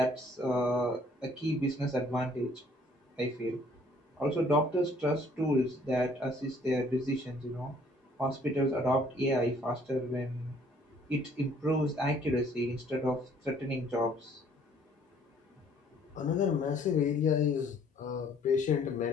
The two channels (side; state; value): both; normal; correlation 0.60